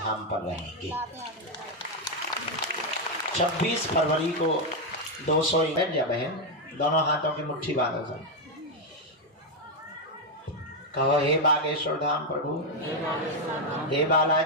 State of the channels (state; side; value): normal; both; correlation 0.02